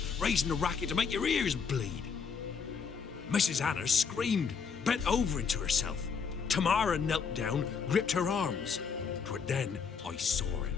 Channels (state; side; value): quieter; right; 5.9 dB